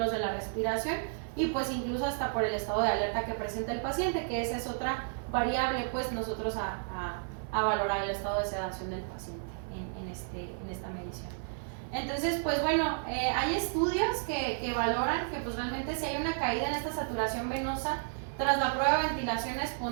de la respiración y pues incluso hasta por el estado de alerta que presenta el paciente, que esa es otra variable pues nosotros a valorar el estado de sedación del paciente en esta medición. Entonces, pues bueno, hay estudios que valoran que pues realmente si hay una caída en esta saturación venosa tras la prueba de ventilación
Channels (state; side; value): silent; left; digital silence